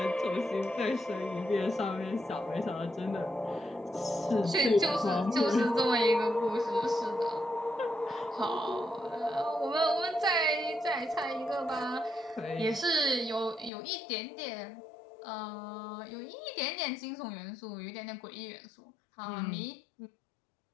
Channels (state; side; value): drops out; right; at 13.7 s